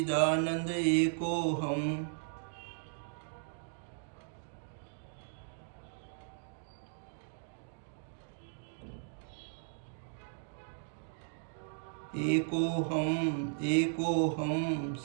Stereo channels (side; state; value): left; silent; digital silence